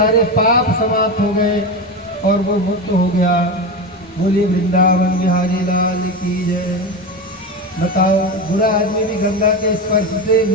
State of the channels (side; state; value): both; normal; correlation 0.20